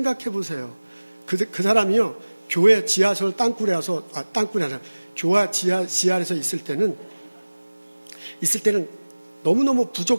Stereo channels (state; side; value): inverted; both; correlation -1.00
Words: 보세요. 그 사람이요. 교회 지하철 땅굴에 와서 교회 지하에서 있을 때는 너무너무